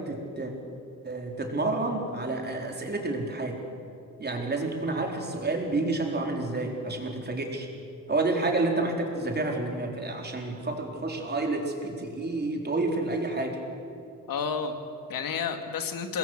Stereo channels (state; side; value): normal; both; correlation 0.24